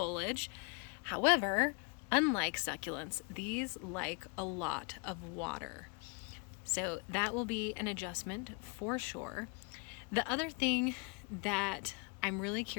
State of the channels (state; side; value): quieter; right; 32.3 dB